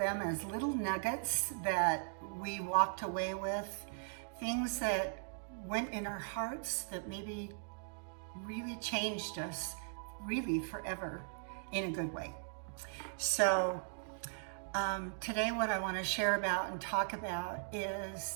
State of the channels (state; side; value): silent; left; digital silence